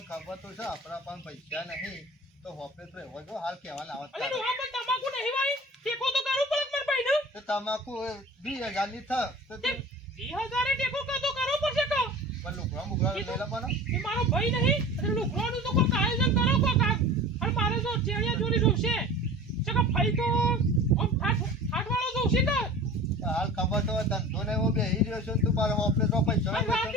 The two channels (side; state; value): both; normal; correlation 0.39